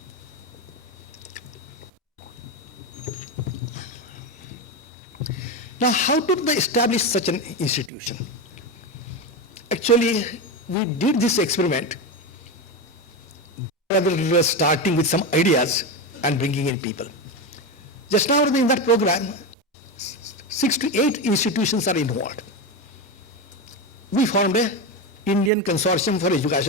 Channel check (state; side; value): normal; both; correlation 0.15